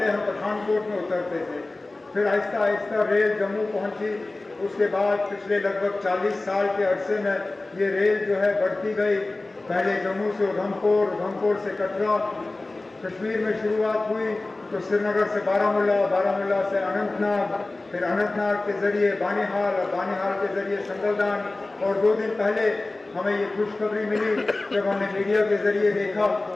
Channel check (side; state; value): right; quieter; 3.0 dB